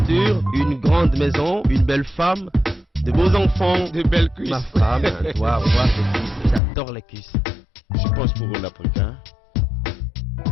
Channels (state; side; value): drops out; right; at 6.6 s